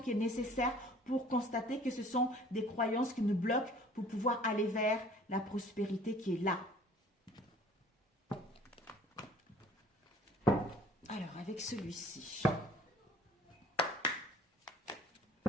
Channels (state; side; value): normal; both; correlation 0.51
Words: est nécessaire pour constater que ce sont des croyances qui nous bloquent pour pouvoir aller vers la prospérité qui est là. Alors, avec celui-ci.